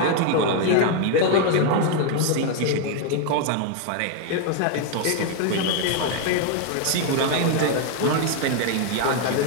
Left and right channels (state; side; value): different; both; correlation 0.00